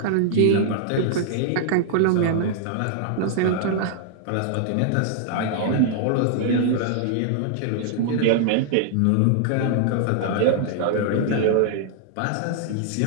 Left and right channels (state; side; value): different; both; correlation -0.01